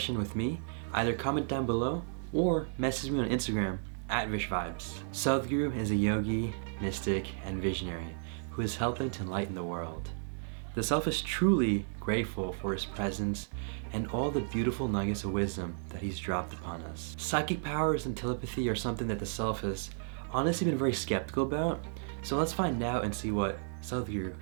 with me, either comment down below or message me on Instagram at VishVibes. Sadhguru is a yogi, mystic, and visionary who is helping to enlighten the world. The self is truly grateful for his presence and all the beautiful nuggets of wisdom that he's dropped upon us. Psychic powers and telepathy are something that the self has honestly been very skeptical about, so let's find out and see what Sadhguru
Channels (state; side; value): silent; left; digital silence